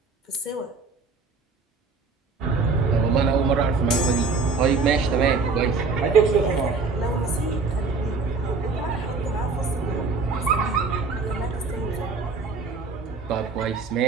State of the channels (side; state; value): left; quieter; 4.3 dB